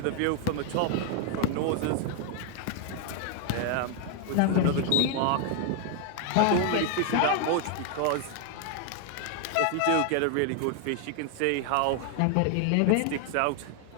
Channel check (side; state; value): both; different; correlation 0.01